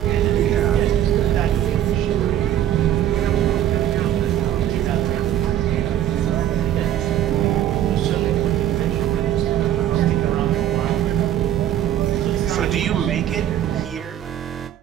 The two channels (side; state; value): left; quieter; 11.6 dB